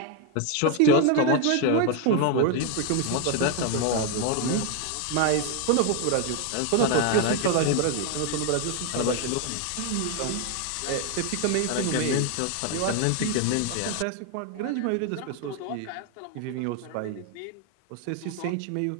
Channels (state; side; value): different; both; correlation 0.01